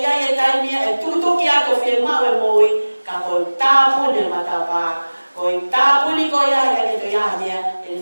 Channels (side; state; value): both; inverted; correlation -1.00